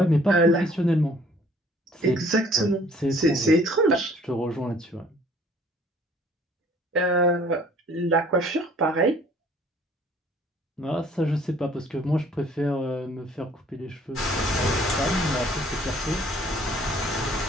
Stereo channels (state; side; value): normal; both; correlation 0.57